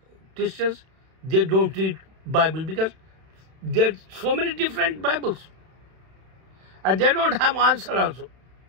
Christians, they don't read Bible, because there's so many different Bibles. And they don't have answer also.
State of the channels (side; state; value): left; late; 31 ms